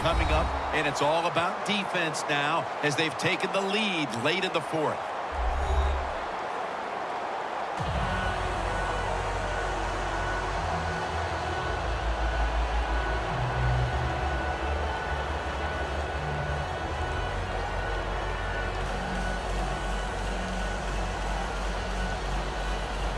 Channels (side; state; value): both; identical; correlation 1.00